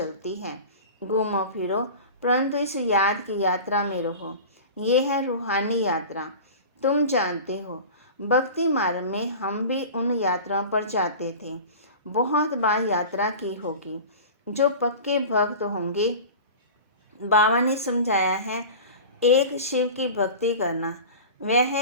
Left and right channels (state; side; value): inverted; both; correlation -0.35